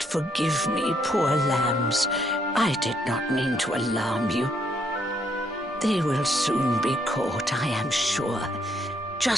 forgive me, poor lambs. I did not mean to alarm you. They will soon be caught, I am sure.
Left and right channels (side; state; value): both; normal; correlation 0.72